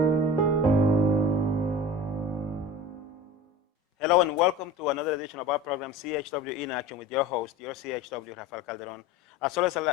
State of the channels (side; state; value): both; normal; correlation 0.36